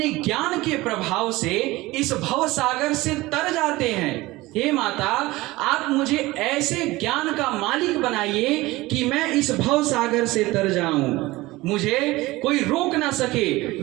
ज्ञान के प्रभाव से इस भव सागर से तर जाते हैं। हे माता, आप मुझे ऐसे ज्ञान का मालिक बनाइए कि मैं इस भव सागर से तर जाऊं, मुझे कोई रोक ना सके,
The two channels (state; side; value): quieter; left; 19.7 dB